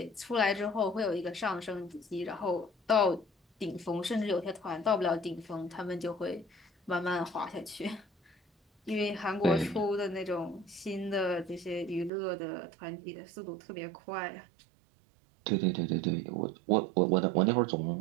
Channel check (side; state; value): left; drops out; at 12.1 s